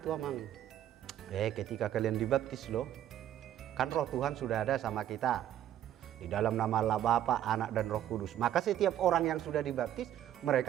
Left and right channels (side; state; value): left; quieter; 11.5 dB